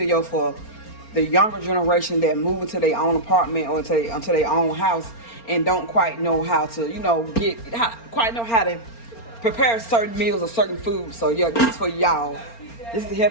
for the younger generation that move into their own apartment or into their own house and don't quite know how to, quite know how to prepare certain meals or certain foods. So yeah, this is for y'all. This is to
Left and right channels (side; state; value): right; late; 4.3 ms